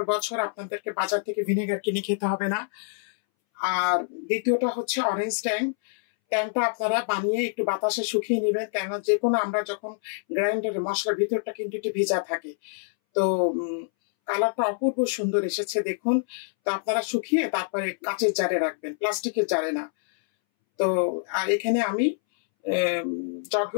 বছর আপনাদেরকে বাজার থেকে ভিনেগার কিনে খেতে হবে না। আর দ্বিতীয়টা হচ্ছে অরেঞ্জ ট্যাংটা আপনারা বানিয়ে একটু বাতাসে শুকিয়ে নেবেন, কেননা যে কোনো আমরা যখন গ্রাইন্ডারে মশলার ভিতরটা কিন্তু একটু ভিজা থাকে। তো কালারটা অপূর্ব সুন্দর এসেছে দেখুন। তো আপনারা শুকিয়ে তারপরে কাঁচের জারে রাখবেন, প্লাস্টিকের জারে না। তো আর এখানে আমি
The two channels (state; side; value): silent; right; 61 dB below the other